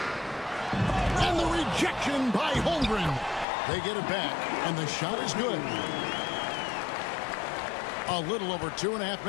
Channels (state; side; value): drops out; right; at 3.5 s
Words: And the rejection by Holmgren. They get it back, and the shot is good. A little over 2.5